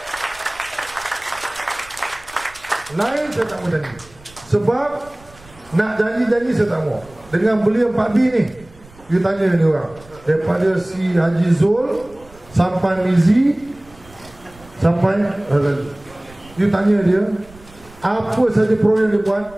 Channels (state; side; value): noise; right; rumble, 24 dB below the sound